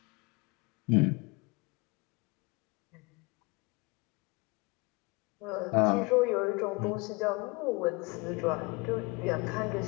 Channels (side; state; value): right; quieter; 27.2 dB